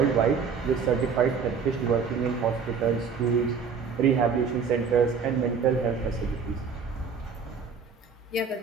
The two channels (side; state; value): left; quieter; 5.8 dB